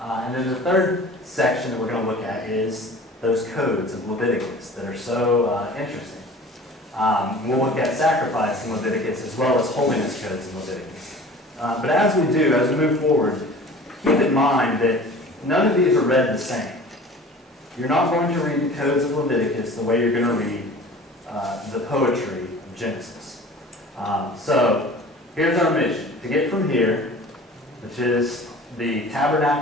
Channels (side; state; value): both; normal; correlation 0.43